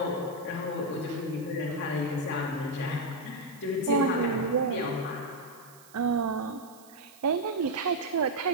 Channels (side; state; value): right; noise; hiss, 23 dB below the sound